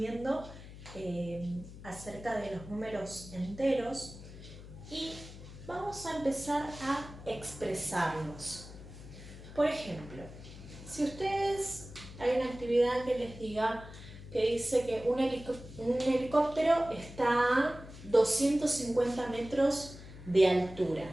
acerca de los números enteros y vamos a empezar a expresarlos. Por ejemplo, si ustedes hay una actividad que les diga que dice que un helicóptero está a 250 metros de altura.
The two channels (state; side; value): noise; left; hum, 15 dB below the sound